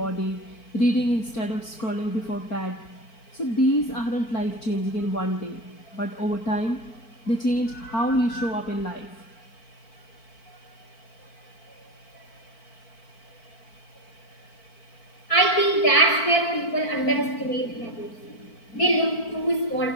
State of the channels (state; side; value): late; right; 4.5 ms